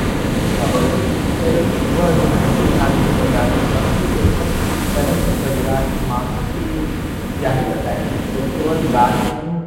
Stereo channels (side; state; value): both; identical; correlation 1.00